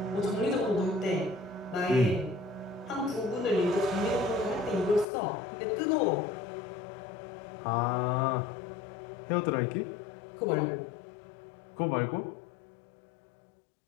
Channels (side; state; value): right; drops out; at 5.1 s